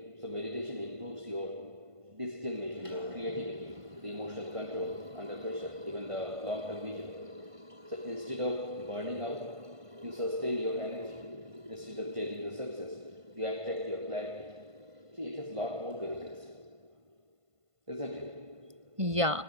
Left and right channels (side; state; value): left; late; 1.5 ms